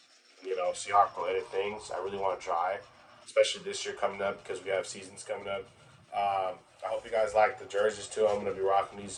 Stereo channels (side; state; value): both; identical; correlation 1.00